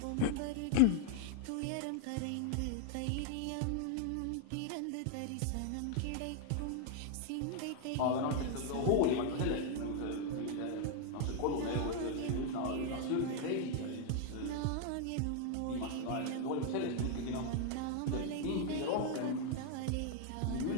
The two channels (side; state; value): both; different; correlation 0.00